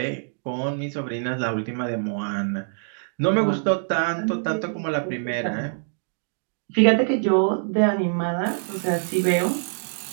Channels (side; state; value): left; silent; digital silence